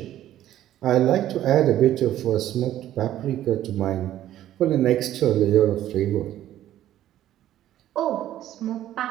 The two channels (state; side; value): quieter; left; 12.7 dB